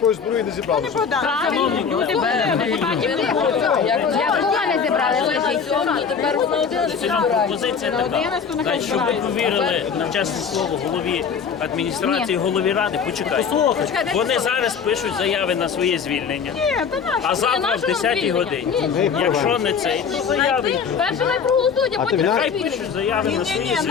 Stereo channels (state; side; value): quieter; right; 6.4 dB